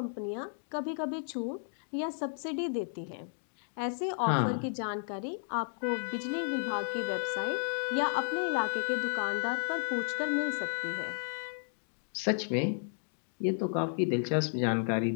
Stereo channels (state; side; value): silent; right; digital silence